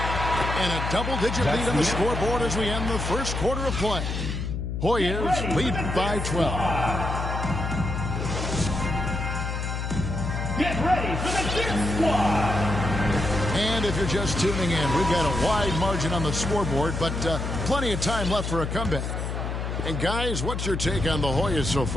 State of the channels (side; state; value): left; noise; hum, 3 dB below the sound